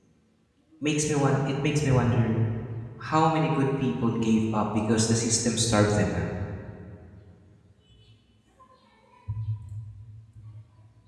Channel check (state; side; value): identical; both; correlation 1.00